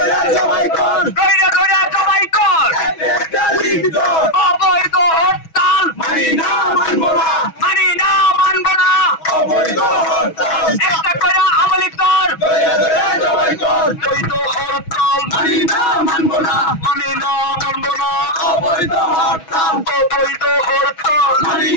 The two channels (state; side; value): late; right; 6.2 ms